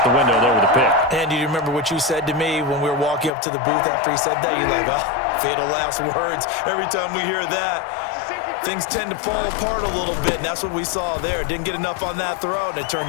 the window there with a pick. And do you remember what you said to me when we were walking up to the booth after he said that? You're like, oh, fatal last words. Every time we hear that, things tend to fall apart a little bit, and that's what we saw there. Didn't get enough on that throw, and it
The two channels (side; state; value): right; drops out; at 3.3 s